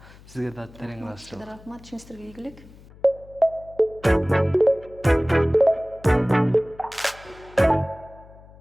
Сизге да терең ыраазычылык. Рахмат, ишиңиздерге ийгилик.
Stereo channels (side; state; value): left; noise; hum, 22 dB below the sound